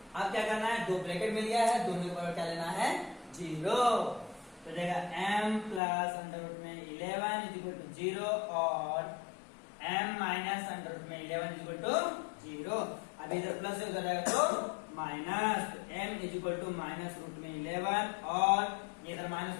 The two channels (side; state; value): right; drops out; at 5.8 s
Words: अब क्या करना है, दो ब्रैकेट मिल गया है, दोनों के बराबर क्या लेना है 0। तो जाएगा m प्लस अंडर रूट में 11 इज इक्वल टू 0 और m माइनस अंडर रूट में 11 इज इक्वल टू 0। अब इधर प्लस है, उधर जाएगा तो माइनस, तो m is equal to minus root में 11 और इधर माइनस